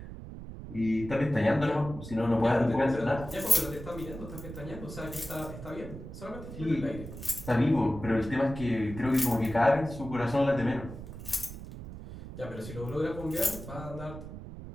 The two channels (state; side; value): noise; right; rumble, 11 dB below the sound